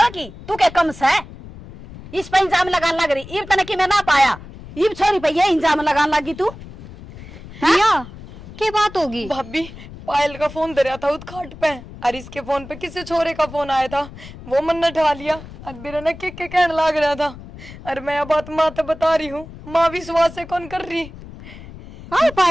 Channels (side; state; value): left; noise; rumble, 16 dB below the sound